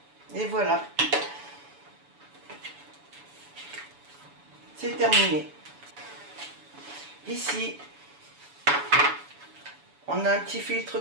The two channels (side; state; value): left; late; 7.0 ms